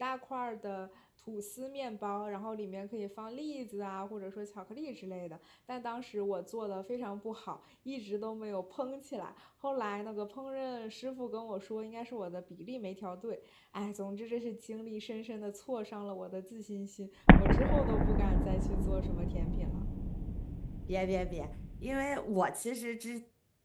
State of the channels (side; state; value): both; identical; correlation 1.00